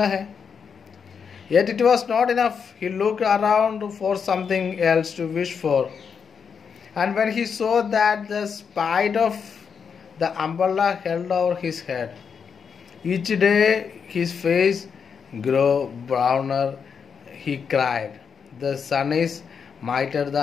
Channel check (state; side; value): quieter; right; 6.5 dB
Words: है. Yet it was not enough. He looked around for something else to wish for. And when he saw that the spite of the umbrella held over his head, each day his face grew browner, he cried. The sun is mightier